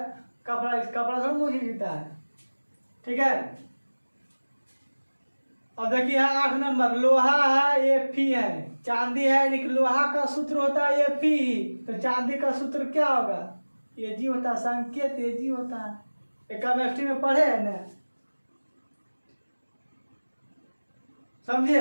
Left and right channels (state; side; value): inverted; both; correlation -1.00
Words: कपड़ा सब मोची जूता है। ठीक है। अब देखिए 8 नंबर, लोहा है ये फी है, चांदी है, लेकिन लोहा का सूत्र होता है ये फी, तो चांदी का सूत्र क्या होगा? ये जी होता है, संकेत ये जी होता है। केमिस्ट्री में पढ़े है ना,